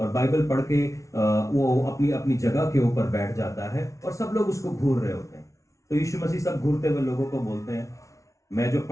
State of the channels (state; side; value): late; right; 0.15 ms